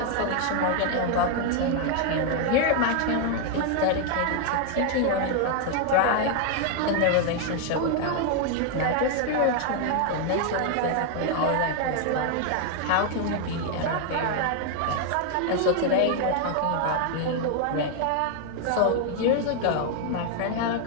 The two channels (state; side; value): different; both; correlation 0.00